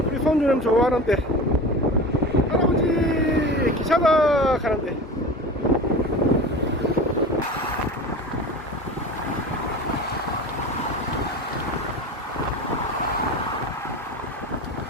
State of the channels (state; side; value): normal; both; correlation 0.32